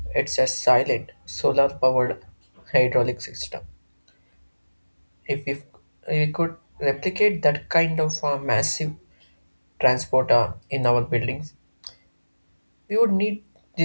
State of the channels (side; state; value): both; inverted; correlation -1.00